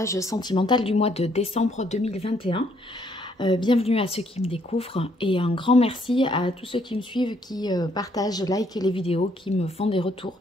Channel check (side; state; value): both; normal; correlation 0.68